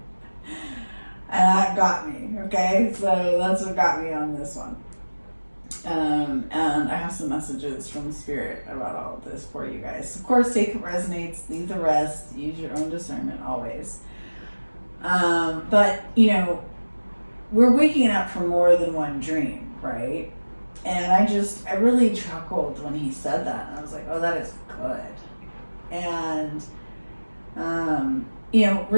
And that got me, okay? So that's what got me on this one. And I have some messages from the Spirit about all of this for you guys. Of course, take what resonates, leave the rest, use your own discernment always. But, you know, we're waking up from more than one dream, right? And I really chuckled when he said that. And I was like, oh, that is good. And, you know,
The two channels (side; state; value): both; inverted; correlation -1.00